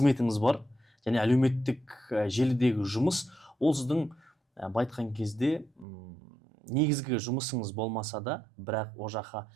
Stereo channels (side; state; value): left; drops out; at 5.9 s